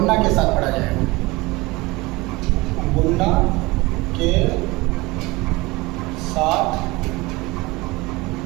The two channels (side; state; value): left; quieter; 22.4 dB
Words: کے ساتھ پڑھا جائے گا غنہ کے ساتھ